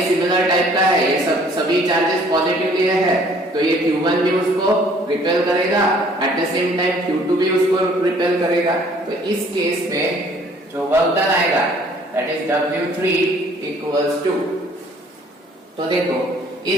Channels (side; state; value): both; normal; correlation 0.57